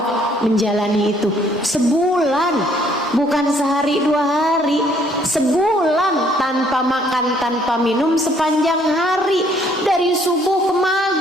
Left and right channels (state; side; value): normal; both; correlation 0.64